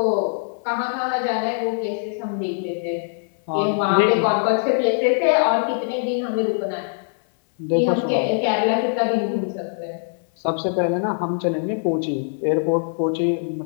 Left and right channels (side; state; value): right; silent; digital silence